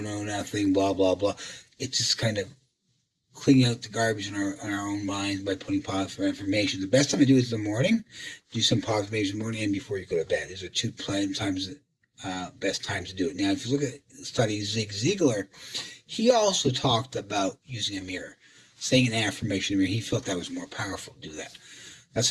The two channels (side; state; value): both; identical; correlation 1.00